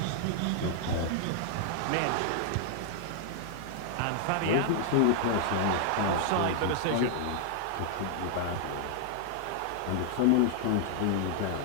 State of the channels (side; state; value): both; different; correlation 0.00